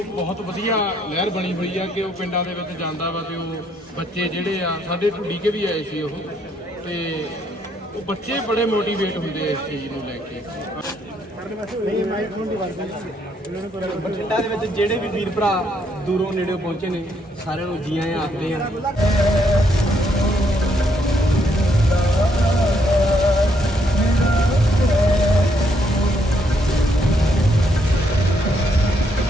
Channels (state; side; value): normal; both; correlation 0.72